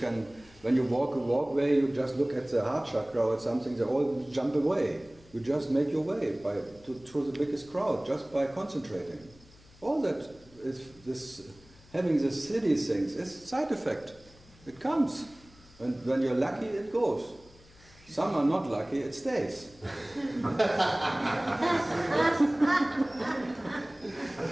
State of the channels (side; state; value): left; noise; hum, 25 dB below the sound